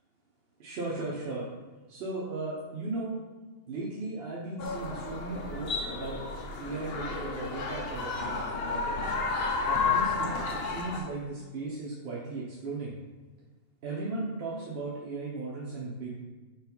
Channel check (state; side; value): late; left; 2.8 ms